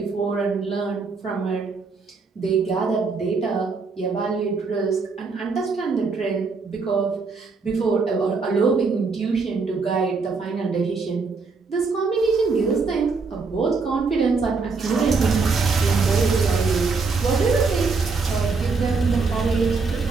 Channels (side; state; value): left; quieter; 4.5 dB